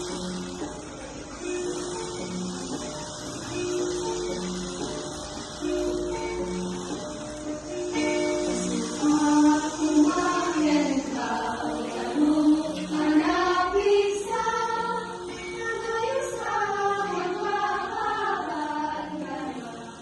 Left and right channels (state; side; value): identical; both; correlation 1.00